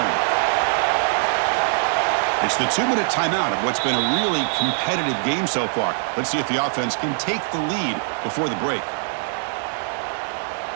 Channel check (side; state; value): left; silent; digital silence